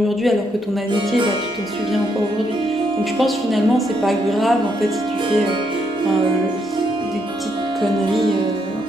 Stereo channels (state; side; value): normal; both; correlation 0.76